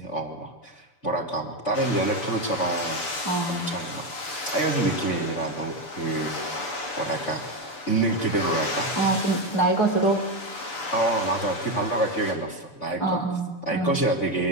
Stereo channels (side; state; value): right; late; 6.9 ms